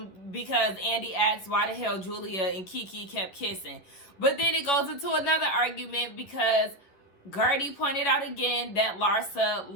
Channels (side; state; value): right; late; 11 ms